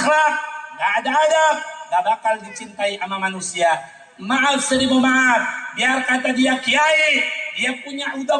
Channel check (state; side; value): identical; both; correlation 1.00